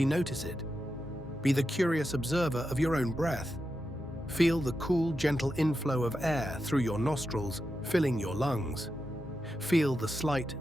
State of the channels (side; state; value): both; normal; correlation 0.88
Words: notice it. Be the curious observer of your own breath. Feel the cool, gentle inflow of air through your nostrils, filling your lungs. Feel the